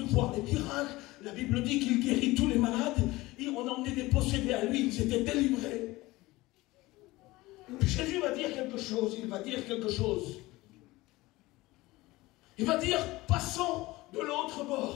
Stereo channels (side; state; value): right; quieter; 19.8 dB